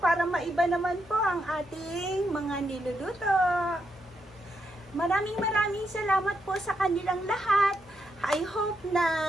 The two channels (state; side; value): normal; both; correlation 0.81